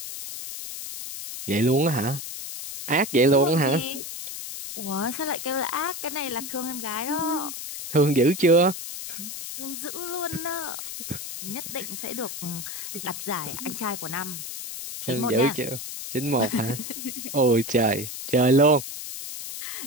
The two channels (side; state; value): left; noise; hiss, 8 dB below the sound